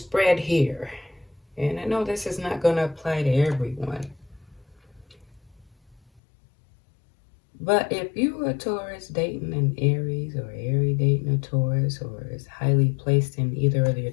here, and I know this is not going to apply to everyone, but if you are a Taurus dating an Aries, or Aries dating a Taurus, or is highly placed in either of their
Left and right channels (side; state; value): right; drops out; at 6.2 s